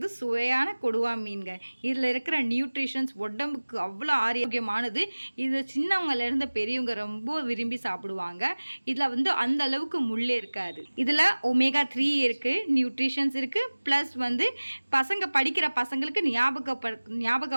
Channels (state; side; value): inverted; both; correlation -1.00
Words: சுவையான கொடுவா மீன்க. இதில் இருக்கிற நியூட்ரிஷன்ஸ் உடம்புக்கு அவ்வளோ ஆரோக்கியமானது. இது சின்னவங்கலேருந்து பெரியவங்க ரொம்ப விரும்பி சாப்பிடுவாங்க. இதில் அந்த அளவுக்கு முள்ளே இருக்காது. இதில் ஒமேகா 3 இருக்குது, நியூட்ரிஷன்ஸ் இருக்குது. ப்ளஸ் பசங்க படிக்கிற பசங்களுக்கு